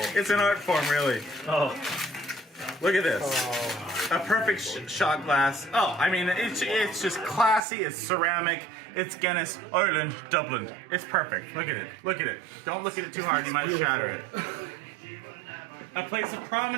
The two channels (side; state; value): left; drops out; at 7.6 s